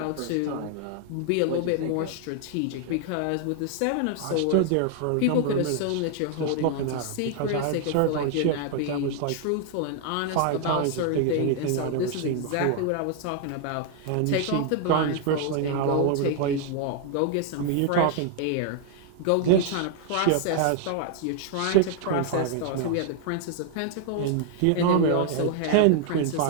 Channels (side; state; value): both; different; correlation 0.00